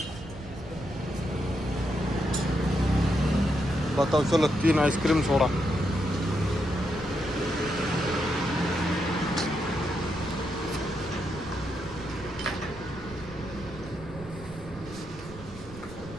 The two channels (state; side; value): noise; right; rumble, 15 dB below the sound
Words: बताओ. चलो 3 आइसक्रीम सोडा.